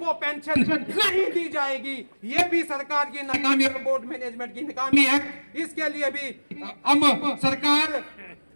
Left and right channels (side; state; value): both; inverted; correlation -1.00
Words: पेंशन नहीं दी जाएगी। ये भी सरकार की नाकामी और बोर्ड मैनेजमेंट की नाकामी है। इसके लिए भी हम सरकार